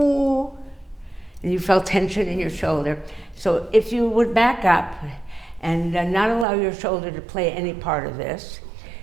and you felt tension in your shoulder. So if you would back up and not allow your shoulder to play any part of this,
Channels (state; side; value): drops out; left; at 6.5 s